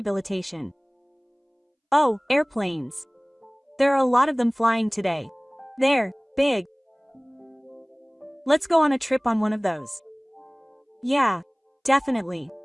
Oh, airplanes. There are a lot of them flying today. They're big. Let's go on a trip on one of those. Yeah. Definitely.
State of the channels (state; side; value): identical; both; correlation 1.00